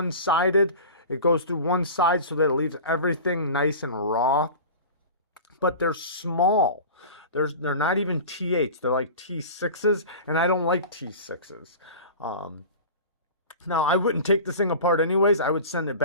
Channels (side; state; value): both; inverted; correlation -0.35